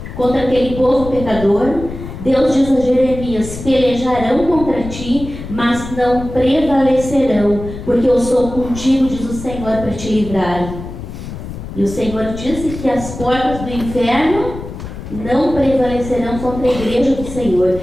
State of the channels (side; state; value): left; noise; rumble, 10 dB below the sound